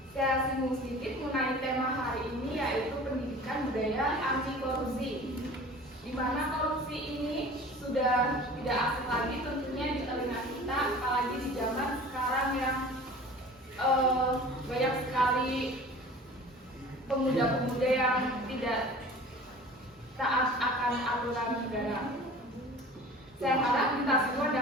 Saya singgung sedikit mengenai tema hari ini yaitu pendidikan budaya anti korupsi, di mana korupsi ini sudah tidak asing lagi tentunya di telinga kita, apalagi di zaman sekarang yang banyak sekali pemuda-pemuda yang tidak taat akan aturan negara. Saya harap kita semua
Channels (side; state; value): both; normal; correlation 0.42